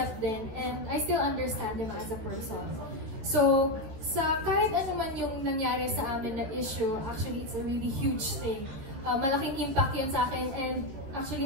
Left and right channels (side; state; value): left; late; 14 ms